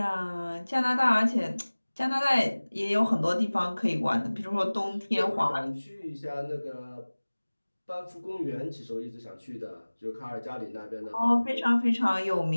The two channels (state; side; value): inverted; both; correlation -1.00